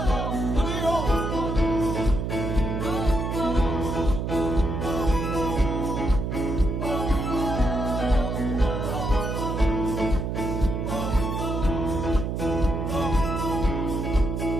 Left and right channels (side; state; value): right; noise; hum, 2 dB below the sound